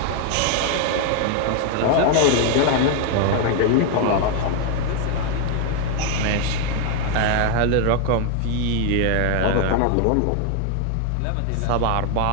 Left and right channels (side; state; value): both; different; correlation 0.01